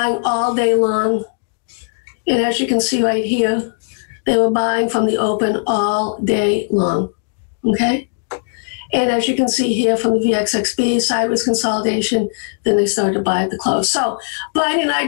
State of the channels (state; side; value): silent; right; digital silence